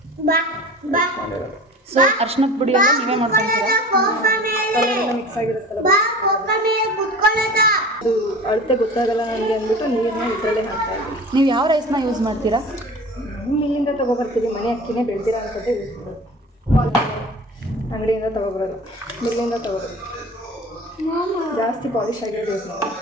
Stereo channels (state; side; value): normal; both; correlation 0.39